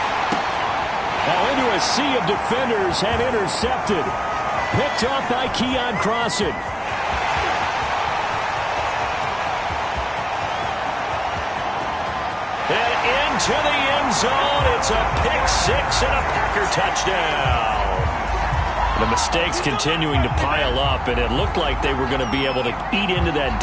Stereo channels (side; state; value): both; identical; correlation 1.00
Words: Now into a sea of defenders and intercepted. Picked off by Keon Crossan. And into the end zone. It's a pick 6 and a Packer touchdown. The mistakes continuing to pile up, and it looked like they were going to be able to eat into that